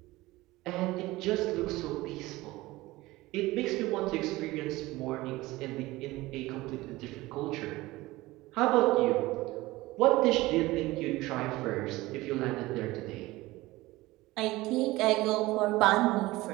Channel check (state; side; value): quieter; left; 19.3 dB